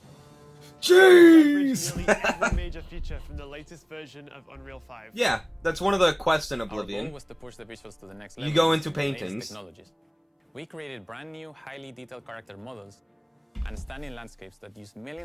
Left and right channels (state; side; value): identical; both; correlation 1.00